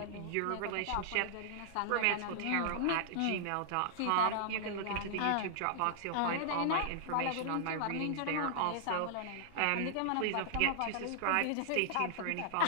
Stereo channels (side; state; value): both; different; correlation -0.01